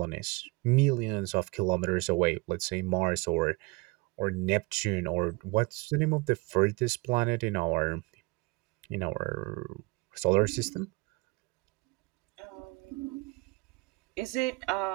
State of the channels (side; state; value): left; quieter; 26.0 dB